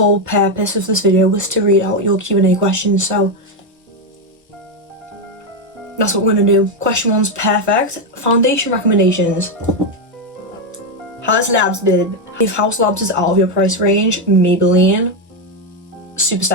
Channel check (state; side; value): normal; both; correlation 0.06